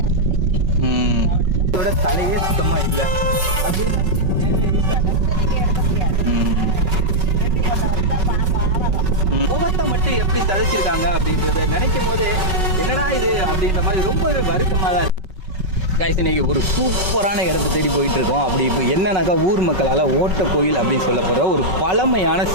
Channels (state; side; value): late; left; 5.3 ms